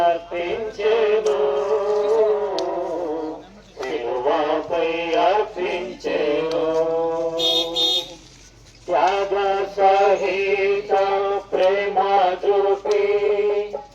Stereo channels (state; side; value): identical; both; correlation 1.00